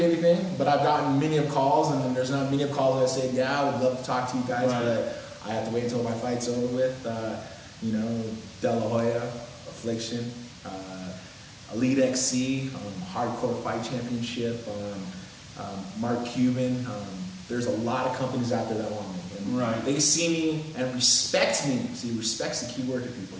but I've gotten many of calls, and there's not many of calls that say, yeah, I would love to talk to you guys, but I have to wait until my fight's over with. You know, De La Hoya, Affliction, Elite XC, Hardcore Fight Championship, Mark Cuban. There's a lot of companies out there that want me. And they see me and respect me. See, respect's the key word to people.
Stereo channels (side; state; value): both; identical; correlation 1.00